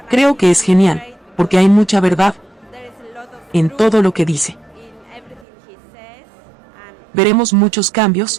Creo que es genial, porque hay mucha verdad en todo lo que dice. Veremos muchos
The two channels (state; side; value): drops out; left; at 5.5 s